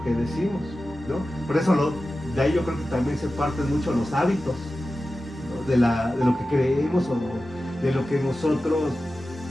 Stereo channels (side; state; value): both; normal; correlation 0.94